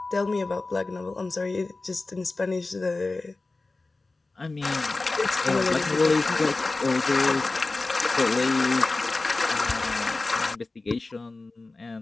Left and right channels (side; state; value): right; quieter; 3.4 dB